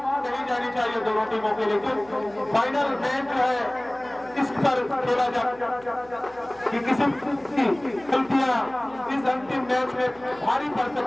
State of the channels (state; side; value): noise; right; hum, 25 dB below the sound